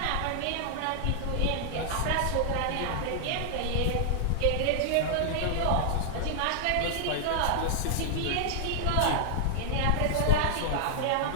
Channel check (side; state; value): both; different; correlation -0.01